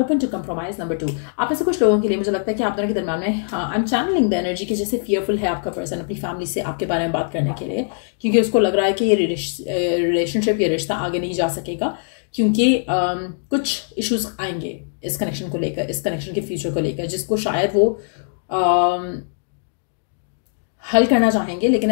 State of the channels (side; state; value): right; silent; digital silence